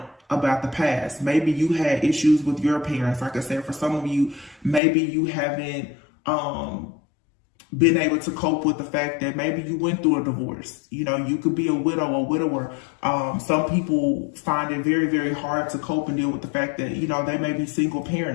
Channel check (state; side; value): drops out; right; at 4.8 s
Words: about the past. Maybe you had issues with your parents. Like I said, for some of you, maybe you haven't been able to cope with the fact that maybe you went through a divorce. You know, you could be a widow or widower. Some people find it very, very hard to cope and deal with the fact that, you know, they may be single